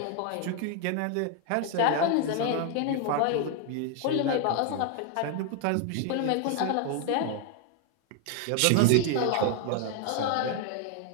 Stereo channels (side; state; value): both; different; correlation 0.00